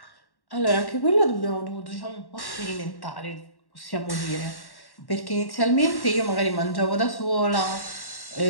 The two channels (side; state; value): right; late; 1.1 ms